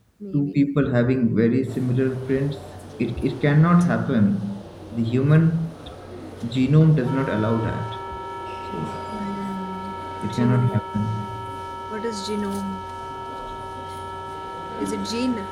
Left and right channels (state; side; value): identical; both; correlation 1.00